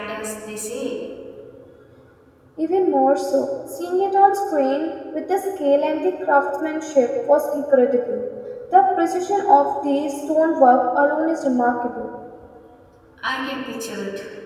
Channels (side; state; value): both; identical; correlation 1.00